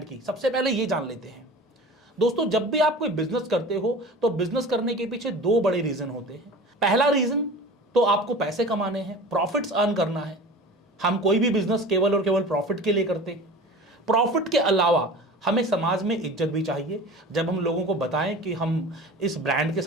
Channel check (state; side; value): normal; both; correlation 0.37